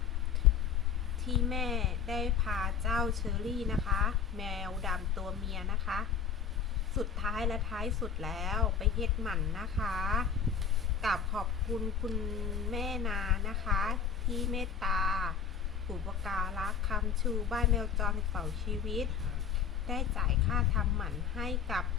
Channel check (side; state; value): right; quieter; 7.0 dB